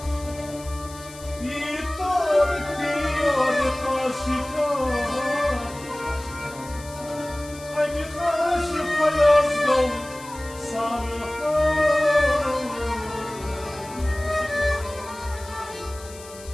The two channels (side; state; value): left; noise; hiss, 18 dB below the sound